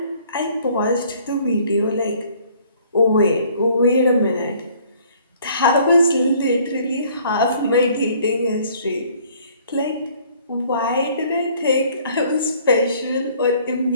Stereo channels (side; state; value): both; inverted; correlation -0.58